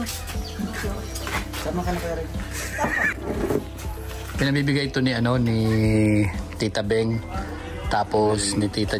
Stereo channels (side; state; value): both; identical; correlation 1.00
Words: Sama ka na Kuya Regan. Pinabibigay ito ni ni Tita Beng, tapos ni Tita